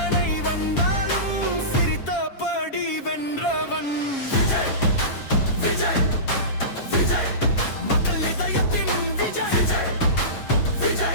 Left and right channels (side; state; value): right; late; 7.3 ms